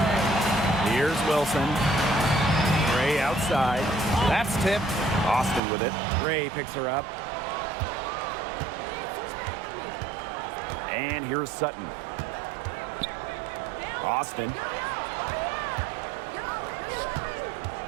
Here's Wilson. Gray outside. That's tipped. Austin with it. Gray picks her up. And here's Sutton. Austin.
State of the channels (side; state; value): left; drops out; at 5.6 s